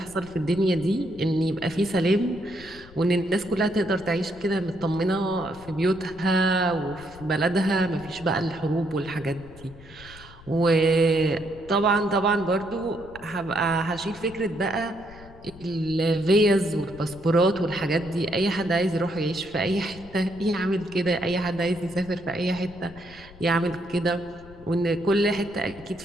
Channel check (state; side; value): noise; left; rumble, 20 dB below the sound